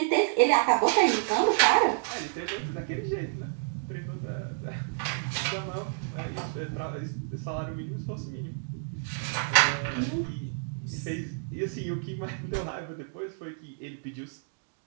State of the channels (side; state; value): left; silent; digital silence